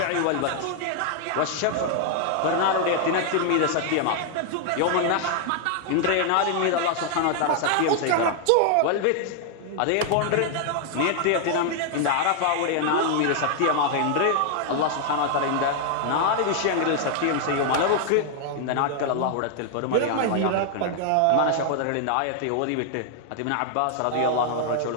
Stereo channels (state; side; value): different; both; correlation 0.00